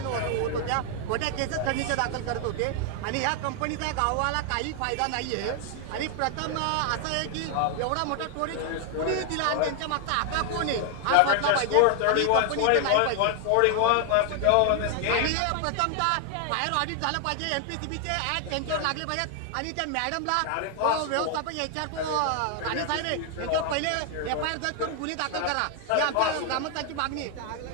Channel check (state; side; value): different; both; correlation 0.00